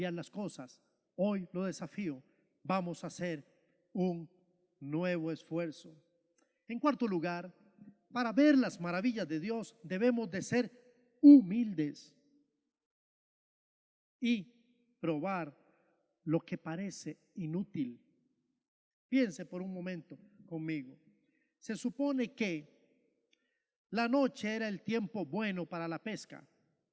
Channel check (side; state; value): both; identical; correlation 1.00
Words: las cosas. Hoy lo desafío. Vamos a hacer un nuevo esfuerzo. En cuarto lugar, para ver las maravillas de Dios debemos de ser humildes y probar lo que parece inútil. Piense por un momento conmigo. Se supone que la noche era el tiempo bueno para la pesca